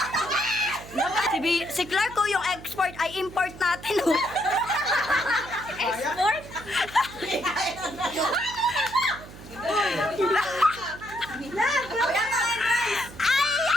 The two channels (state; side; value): noise; right; hum, 16 dB below the sound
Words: Si Clark ko yung export ay import natin. Oh. Export?